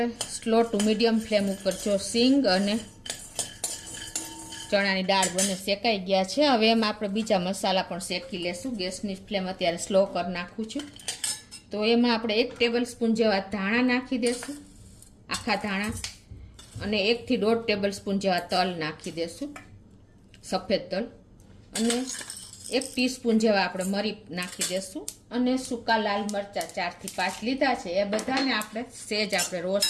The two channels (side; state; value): both; identical; correlation 1.00